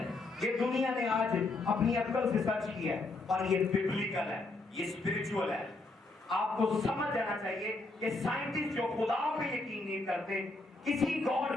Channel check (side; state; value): right; quieter; 3.2 dB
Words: ये दुनिया ने आज अपनी अक्ल से सर्च किया है, और ये बिब्लिकल है, ये स्पिरिचुअल है। आपको समझ जाना चाहिए कि साइंटिस्ट जो खुदा पे यकीन नहीं करते, किसी